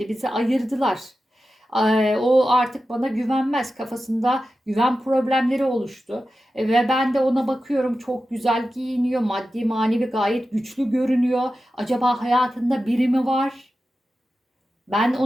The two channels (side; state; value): both; normal; correlation 0.92